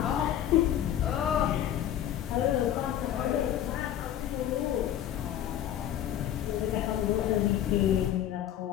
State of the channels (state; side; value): quieter; right; 11.1 dB